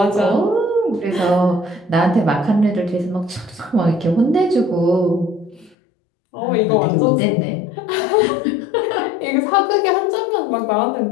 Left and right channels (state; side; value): drops out; right; at 5.8 s